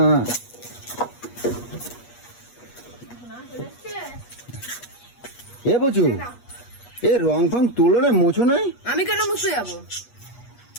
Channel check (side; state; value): right; late; 8.3 ms